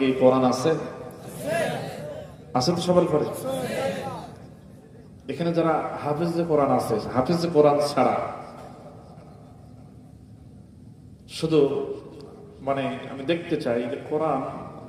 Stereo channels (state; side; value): identical; both; correlation 1.00